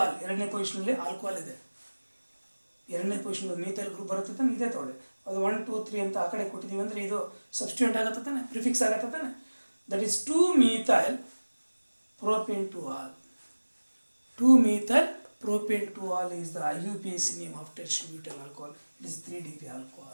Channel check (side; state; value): both; inverted; correlation -1.00